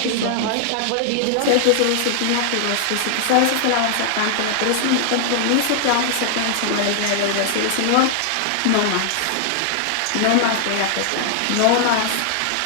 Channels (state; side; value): different; both; correlation 0.00